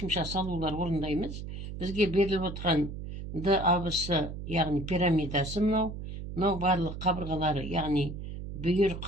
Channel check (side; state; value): right; noise; hum, 8 dB below the sound